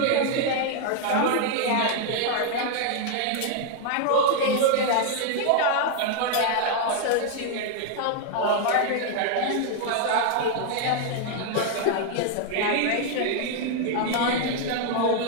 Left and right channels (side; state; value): both; different; correlation 0.00